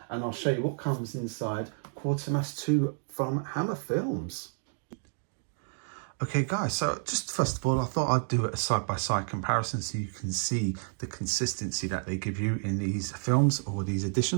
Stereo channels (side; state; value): left; silent; digital silence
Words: and I'll show you what comes inside Quatermass 2 from Hammer Films. Okay guys, so just first of all, I thought I'd do a side-by-side comparison so you can see the consistency that they give you in these films or these